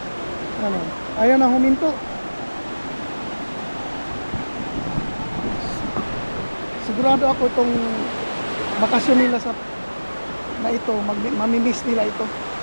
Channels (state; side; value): inverted; both; correlation -1.00